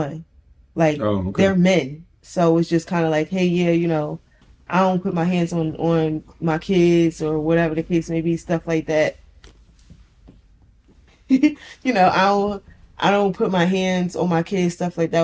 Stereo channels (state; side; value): identical; both; correlation 1.00